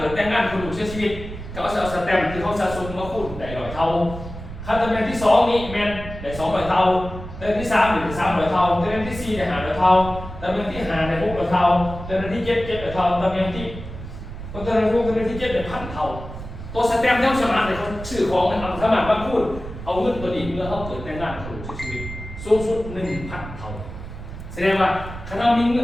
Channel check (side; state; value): right; noise; rumble, 11 dB below the sound